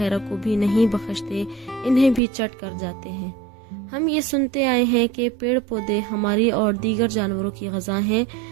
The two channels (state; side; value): drops out; left; at 2.2 s